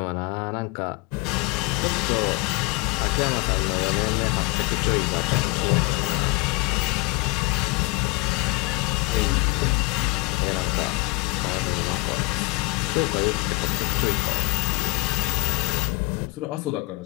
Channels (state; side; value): quieter; right; 24.7 dB